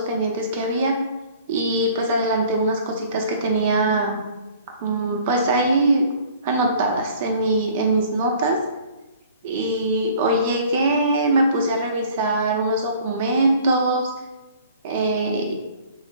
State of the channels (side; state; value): both; inverted; correlation -0.52